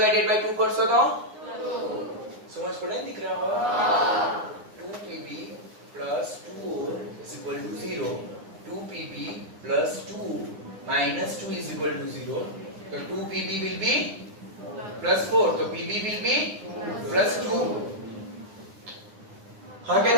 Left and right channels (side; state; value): left; late; 9.8 ms